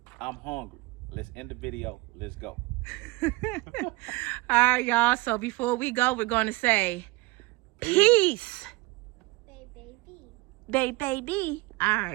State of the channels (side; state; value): left; quieter; 22.7 dB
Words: I'm hungry. Let's end the video. Let's go. All right, y'all. So before we go, we're going to say peace. Baby. Baby. All